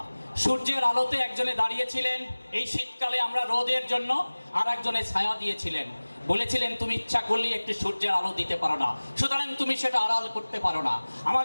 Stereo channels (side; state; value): both; inverted; correlation -1.00